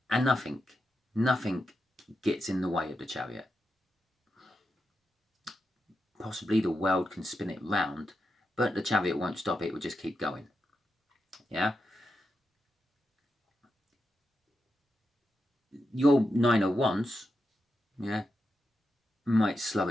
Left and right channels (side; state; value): both; normal; correlation 0.87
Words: nothing gets in the way of the Chariot. Possibly the world can spin it round, but the Chariot won't stop it. It will just keep going. Yeah. Your Nine of Wands, yeah, might slow